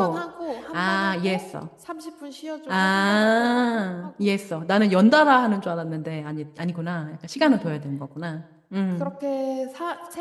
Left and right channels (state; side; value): identical; both; correlation 1.00